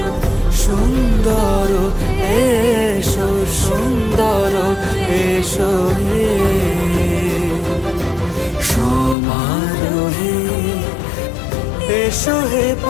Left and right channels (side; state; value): right; drops out; at 9.2 s